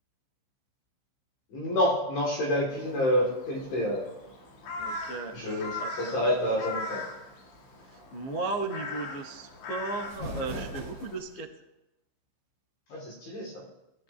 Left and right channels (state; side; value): late; right; 15 ms